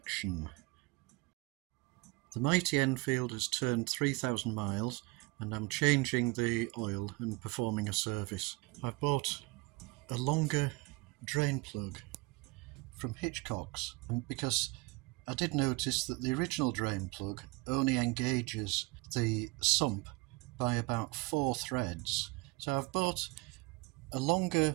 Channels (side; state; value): left; quieter; 24.6 dB